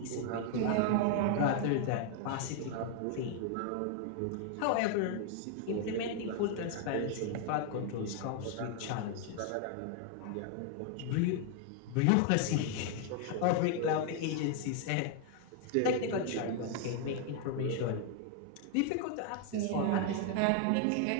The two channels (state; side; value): different; both; correlation 0.00